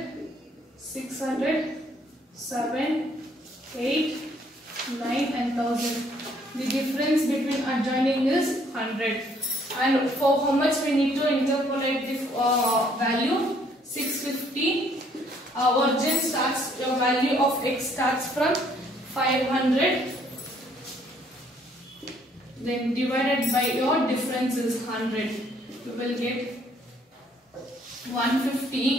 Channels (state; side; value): normal; both; correlation 0.64